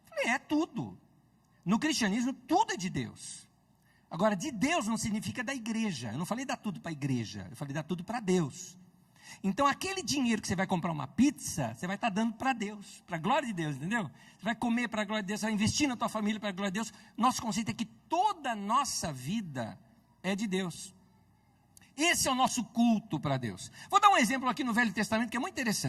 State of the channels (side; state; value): both; identical; correlation 1.00